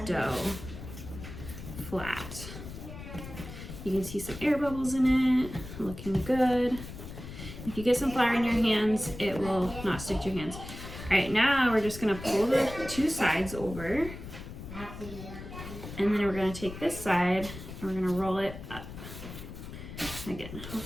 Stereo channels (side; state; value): left; noise; rumble, 11 dB below the sound